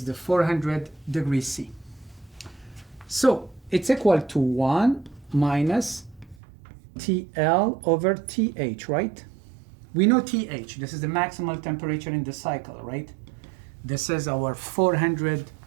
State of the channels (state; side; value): drops out; left; at 6.4 s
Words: the 400 degrees C. So it's equal to 1 minus TL over TH, right? We know TH, this is the maximal temperature in the cycle, right? This is our 400